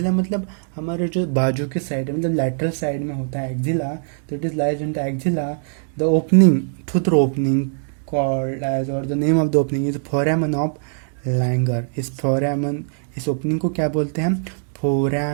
मतलब हमारे जो बाजू के साइड है, मतलब लैटरल साइड में होता है एक्जिला। तो it is lies in the axilla. The opening, through opening called edge, और the name of the opening is foramen of Langer. इस फोरामन, इस ओपनिंग को क्या बोलते हैं हम?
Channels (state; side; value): silent; left; digital silence